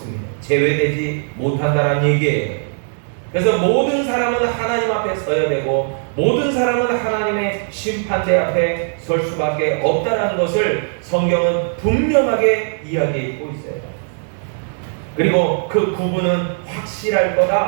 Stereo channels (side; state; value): left; silent; digital silence